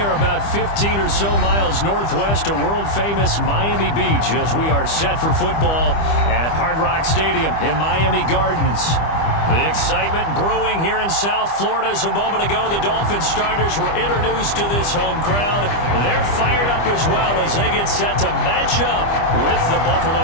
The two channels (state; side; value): late; right; 25 ms